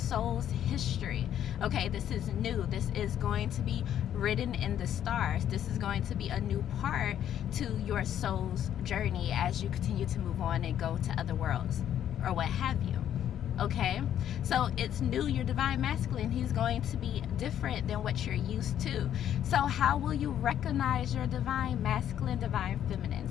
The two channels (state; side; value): quieter; right; 10.4 dB